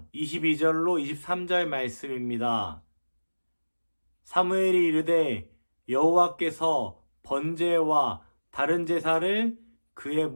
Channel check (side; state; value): both; inverted; correlation -1.00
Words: 22절로 23절 말씀입니다. 사무엘이 이르되 여호와께서 번제와 다른 제사를 그의